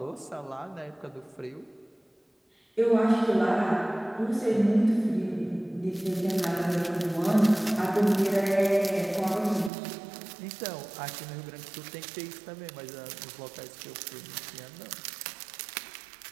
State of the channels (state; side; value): drops out; left; at 9.7 s